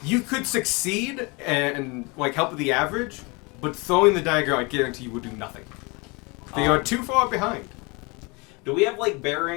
You could succeed and like help with the average, but throwing the dagger, I guarantee you, will do nothing. They are too far behind. Do we have like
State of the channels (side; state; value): right; quieter; 28.0 dB